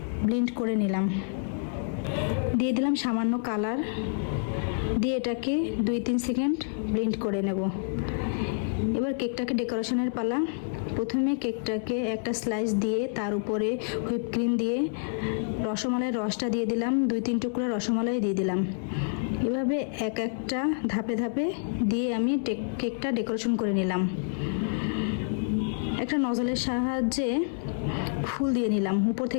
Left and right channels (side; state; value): right; silent; 59 dB below the other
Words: ব্লেন্ড করে নিলাম। দিয়ে দিলাম সামান্য কালার, দিয়ে এটাকে 2-3 সেকেন্ড ব্লেন্ড করে নেব। এবার কেকটাকে ডেকোরেশনের পালা। প্রথমে কেকটাকে একটা স্লাইস দিয়ে তার উপরে হুইপ ক্রিম দিয়ে রসমালাইয়ের রসটা দিয়ে দিলাম। 2-3 টুকরা রসমালাই দিয়ে দিলাম। এভাবে একটা ধাপে ধাপে দিয়ে আমি কেকটা ডেকোরেশন করে নিলাম। একটা নজলের সাহায্যে ফুল দিয়ে নিলাম। উপর